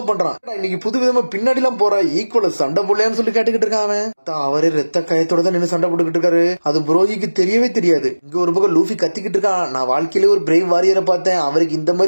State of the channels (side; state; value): both; inverted; correlation -1.00